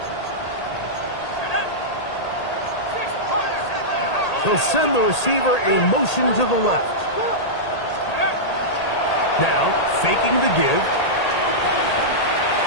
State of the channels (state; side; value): late; right; 1.8 ms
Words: They'll send the receiver a motion to the left. Now, faking the give.